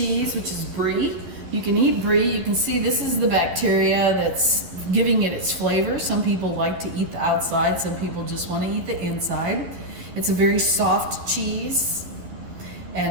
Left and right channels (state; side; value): late; left; 12 ms